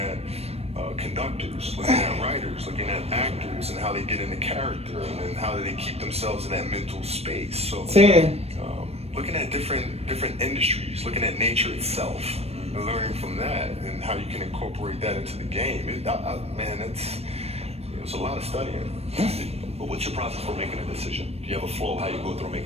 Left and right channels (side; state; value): left; late; 0.30 ms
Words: conductors, looking at writers, looking at actors, and how they get into character, and then how do they keep themselves in that mental space. So, 10. looking at different industries, looking at nature itself, and learning from that, and how you can incorporate that into the game. Man, it's a lot of studying. But what's your process for making a decision? Do you have a flow? How you go through